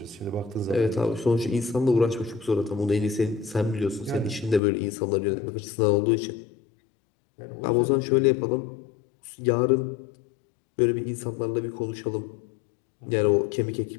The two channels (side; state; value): right; drops out; at 4.6 s